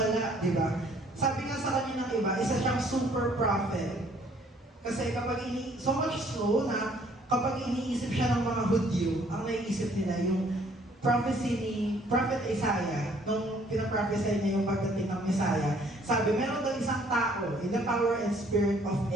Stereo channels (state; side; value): normal; both; correlation 0.61